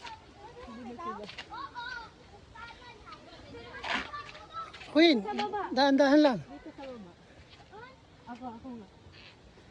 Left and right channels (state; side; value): identical; both; correlation 1.00